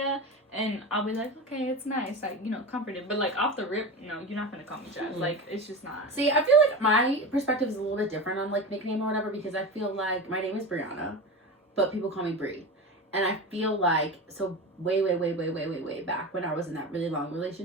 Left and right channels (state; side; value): normal; both; correlation 0.26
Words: and I'll be like, okay, it's nice. Like, comforted. But, like, off the rip, no, you're not going to call me Jazz. Mm-hmm. Like, it's just not. See, I feel like my perspective is a little bit different on, like, nickname or whatever, because I feel like my name is Brianna, but people call me Brie. And I feel like, so way back when I was in that really long